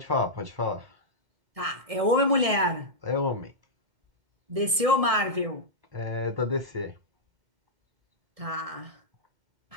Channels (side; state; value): left; late; 1.7 ms